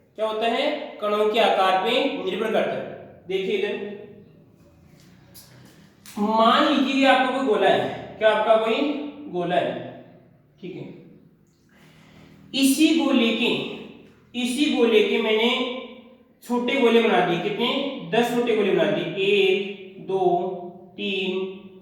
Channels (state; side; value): identical; both; correlation 1.00